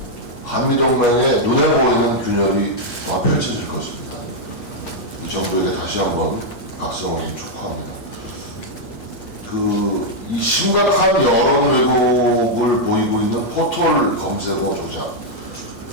한미동맹의 눈에 보이는 균열이 펼쳐질 것입니다. 이 정부에게 다시 한번 각성을 촉구합니다. 이 심각한 여론 왜곡을 보이고 있는 포털 검색어 조작,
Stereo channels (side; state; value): right; late; 8.5 ms